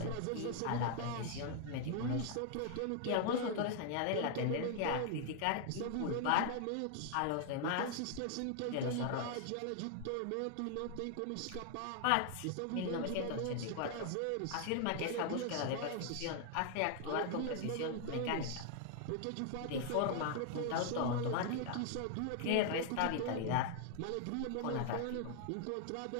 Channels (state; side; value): different; both; correlation 0.00